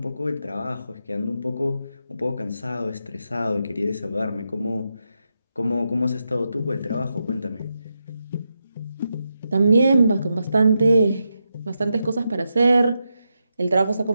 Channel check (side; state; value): both; inverted; correlation -0.86